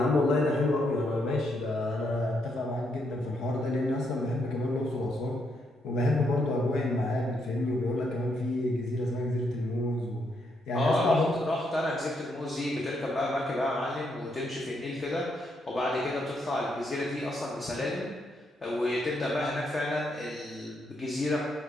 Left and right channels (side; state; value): both; normal; correlation 0.77